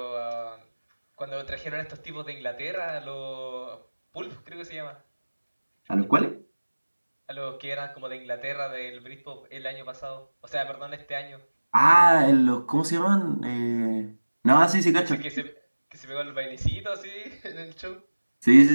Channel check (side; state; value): both; inverted; correlation -1.00